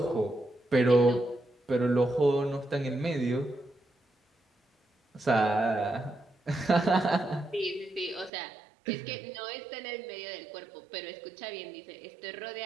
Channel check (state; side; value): drops out; left; at 8.3 s